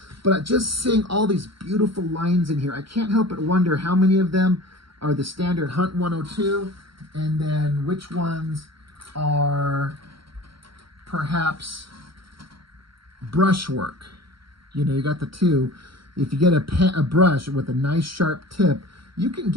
But just seeing all these beautiful lines in here, I can't help but wonder how many of them are the standard Hunt 102, and then which ones are perhaps brushwork. You know, you got the two. If you get a brush with a nice sharp tip, you can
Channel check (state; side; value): late; left; 0.74 ms